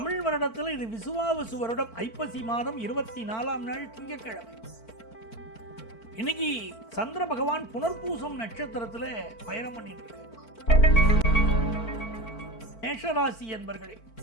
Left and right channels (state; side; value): late; right; 4.5 ms